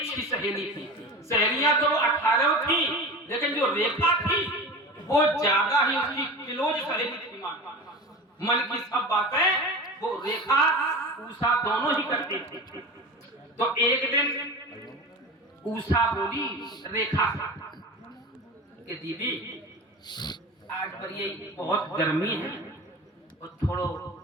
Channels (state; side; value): normal; both; correlation 0.31